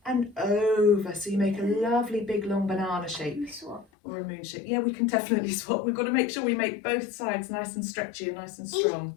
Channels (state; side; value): drops out; right; at 3.9 s